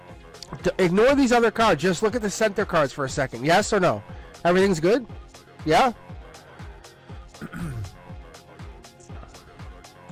Ignore these other cards. Just look at the center cards for a second. Yes or no? Everything's good? Yeah?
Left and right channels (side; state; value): both; identical; correlation 1.00